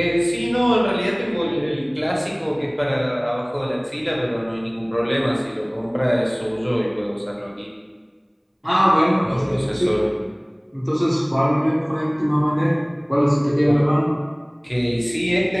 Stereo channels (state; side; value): identical; both; correlation 1.00